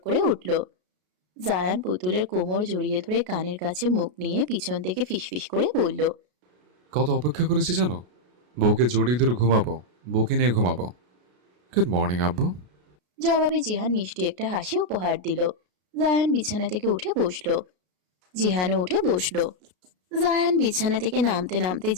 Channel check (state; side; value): late; left; 33 ms